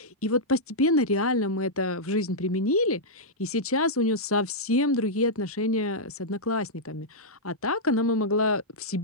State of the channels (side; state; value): both; normal; correlation -0.08